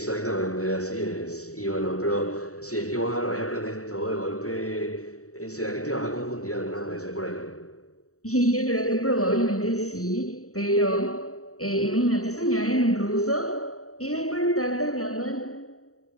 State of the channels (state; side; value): late; right; 0.65 ms